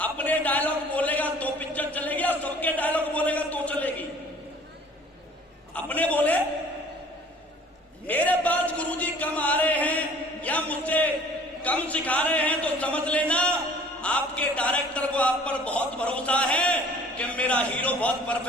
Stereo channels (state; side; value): normal; both; correlation 0.51